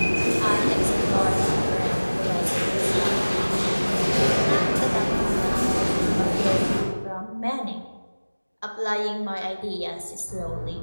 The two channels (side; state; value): both; inverted; correlation -1.00